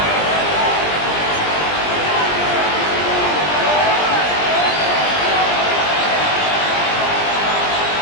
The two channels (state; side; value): late; right; 20 ms